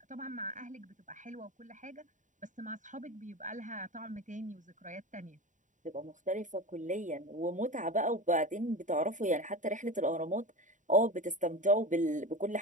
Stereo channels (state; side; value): late; left; 0.36 ms